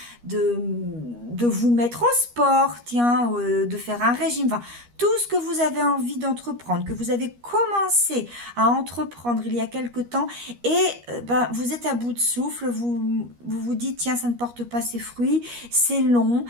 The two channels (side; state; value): left; late; 13 ms